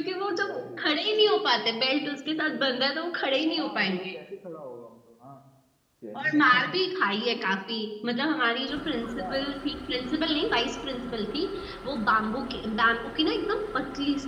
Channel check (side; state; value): both; identical; correlation 1.00